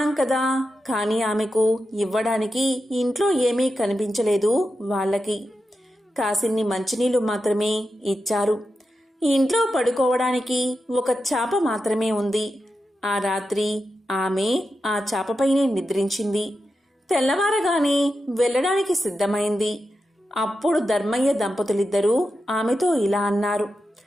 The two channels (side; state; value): both; normal; correlation 0.89